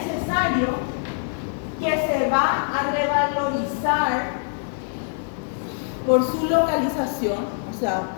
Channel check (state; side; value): silent; right; digital silence